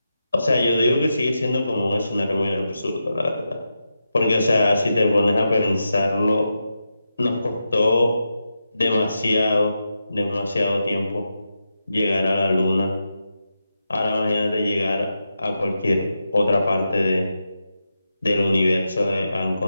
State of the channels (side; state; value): both; inverted; correlation -0.88